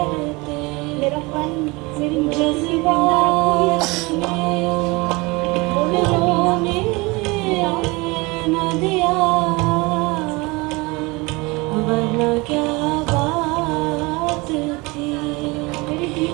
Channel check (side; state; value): left; quieter; 24.8 dB